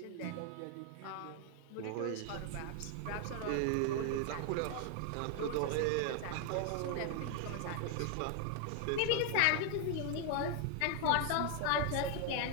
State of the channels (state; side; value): different; both; correlation 0.00